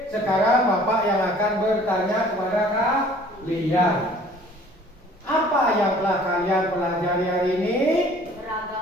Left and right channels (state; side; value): normal; both; correlation 0.52